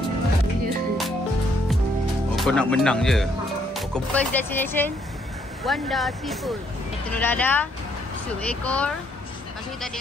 Oh, kau nak menang je. Oh, First destination Wanda Seafood. Telur dadah, sup ekor. Lepas tu kita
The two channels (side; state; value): both; normal; correlation 0.70